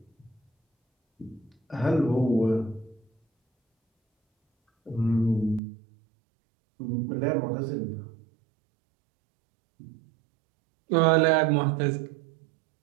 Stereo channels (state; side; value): drops out; left; at 5.6 s